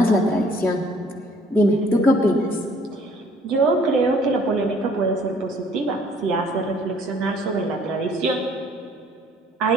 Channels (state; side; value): normal; both; correlation 0.59